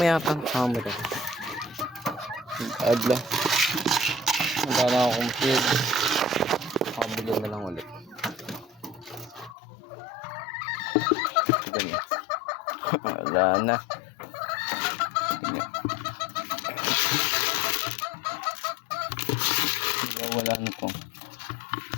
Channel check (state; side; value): drops out; right; at 9.6 s